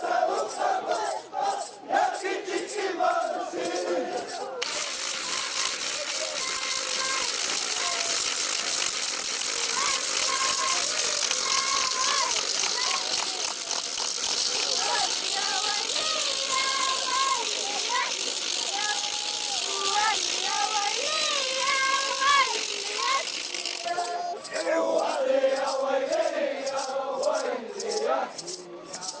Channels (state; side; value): identical; both; correlation 1.00